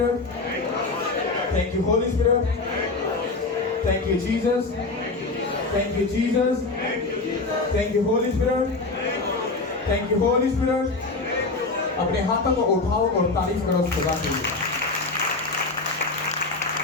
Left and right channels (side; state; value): right; quieter; 3.5 dB